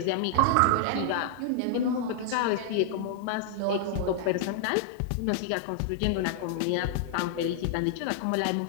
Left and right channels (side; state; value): both; different; correlation -0.01